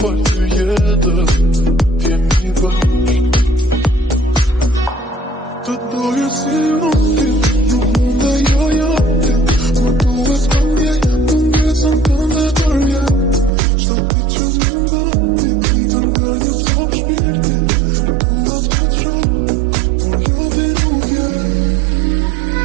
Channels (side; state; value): left; drops out; at 13.5 s